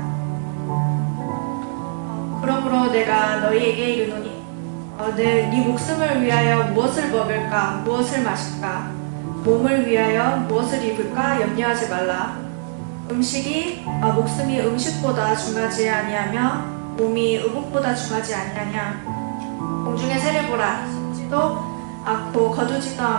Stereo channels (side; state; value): left; silent; 64 dB below the other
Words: 그러므로 내가 너희에게 이르노니 네 목숨을 위하여 무엇을 먹을까 무엇을 마실까 몸을 위하여 무엇을 입을까 염려하지 말라. 음식이 목숨이 음식보다 중하지 아니하며 몸이 의복보다 중하지 아니하냐. 공중의 새를 보라. 심지도 않고 거두지도